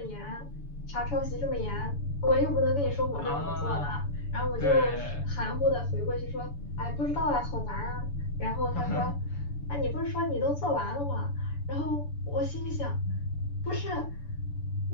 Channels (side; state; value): right; late; 7.0 ms